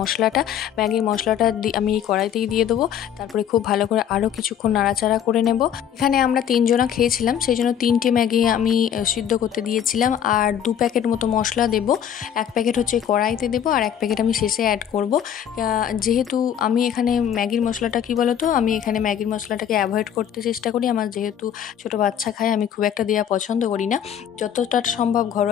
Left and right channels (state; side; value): quieter; right; 9.3 dB